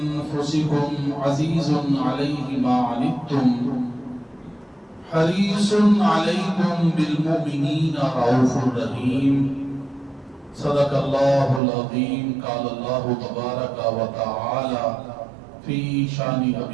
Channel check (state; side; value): drops out; left; at 11.6 s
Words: عزيز عليه ما عنتم حريص عليكم بالمؤمنين رؤوف رحيم صدق الله العظيم قال الله تبارك وتعالى في شان